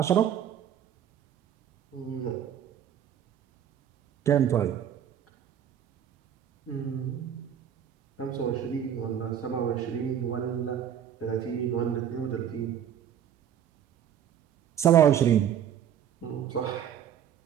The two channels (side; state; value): left; quieter; 9.5 dB